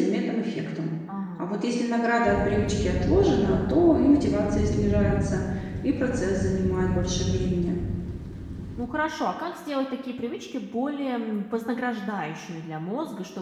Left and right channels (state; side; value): identical; both; correlation 1.00